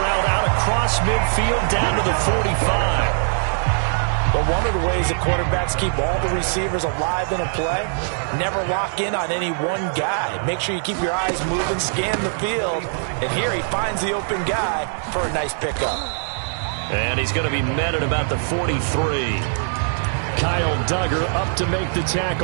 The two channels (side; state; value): left; silent; 65 dB below the other